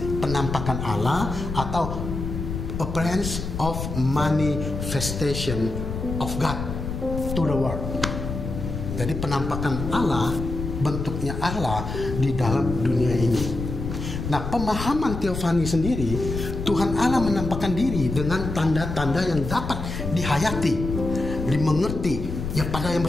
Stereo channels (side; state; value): left; noise; rumble, 5 dB below the sound